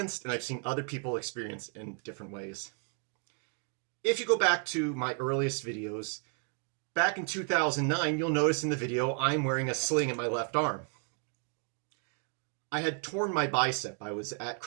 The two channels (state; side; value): quieter; left; 39.6 dB